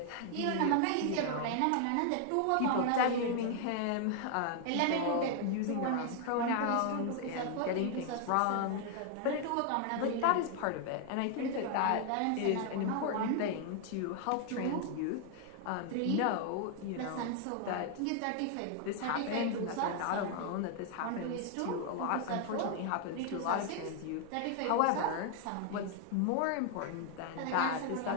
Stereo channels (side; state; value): both; different; correlation 0.00